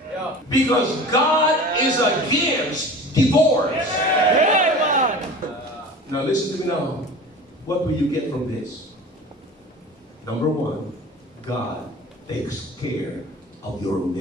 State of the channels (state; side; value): normal; both; correlation 0.38